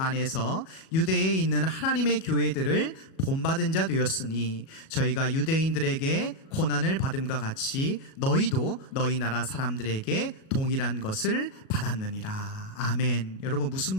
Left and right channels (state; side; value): late; right; 37 ms